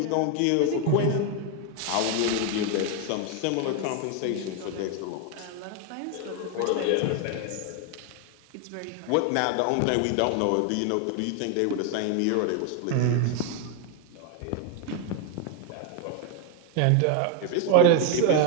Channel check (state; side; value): different; both; correlation 0.01